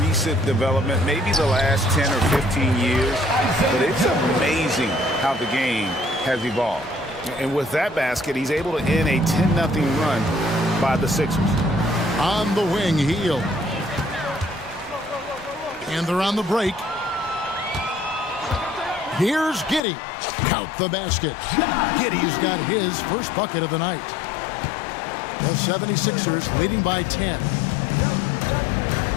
recent development, maybe the last 10 or 15 years, but it's amazing how the game has evolved. And with that basket, he's able to end a 10-0 run by the Sixers. On the wing, Hield. And they're on the break. Here's Giddey. Count the basket. Giddey's got his first bucket of the night. The 76ers leading by 10.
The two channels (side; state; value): right; drops out; at 19.8 s